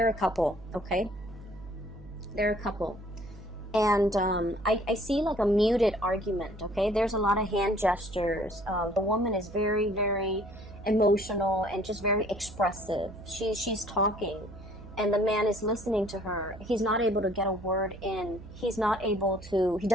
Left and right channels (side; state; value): right; noise; hum, 16 dB below the sound